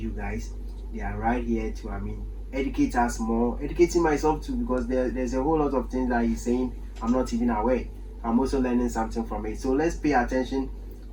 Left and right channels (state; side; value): identical; both; correlation 1.00